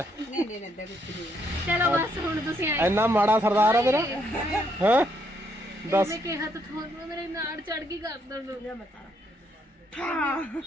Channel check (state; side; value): normal; both; correlation 0.73